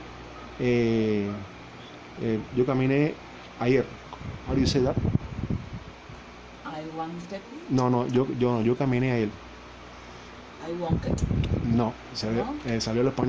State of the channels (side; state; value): both; identical; correlation 1.00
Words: ayer. How do you say that? I wanted. No, yo caminé ayer. I wanted. No, salió el